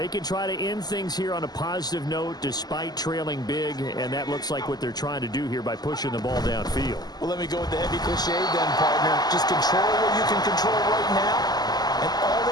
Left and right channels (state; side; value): late; right; 0.20 ms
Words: can try to end things here on a positive note despite trailing big, and that looks like what they're trying to do here by pushing the ball downfield. Well, let me go with the heavy cliche then, partner. Just control what you can control right now, and all